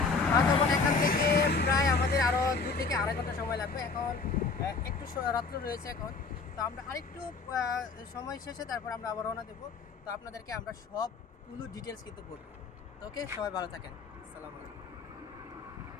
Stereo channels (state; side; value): quieter; right; 4.4 dB